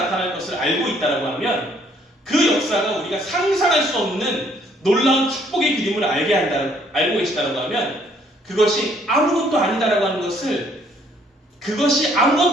것을 알고 있다라고 하면 그 역사가 우리가 상상할 수 없는 놀라운 축복의 그림을 알고 계시다라고 하면 그것이 아무것도 아니다라고 하는 것을 그것이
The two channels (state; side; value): normal; both; correlation 0.64